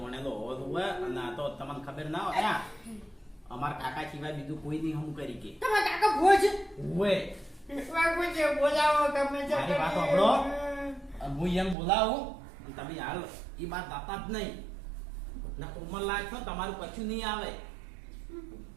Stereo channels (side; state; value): left; drops out; at 11.8 s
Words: હોવો જોવે. અને આ તો તમને ખબર ના હોય, અમાર કાકા સિવાય બીજું કોઈ નહીં હમ કરી કે. તમારા કાકા ભૂવો છે? ઓએ વાગો છે, બોલાવો ગમે તે. મારી વાત સાંભળો, હું એમ બોલાવું તમે હાલ એ વાત દાતા જ નહીં. ના ઉંમર લાયક છો, તમારું કશું નહીં આવે.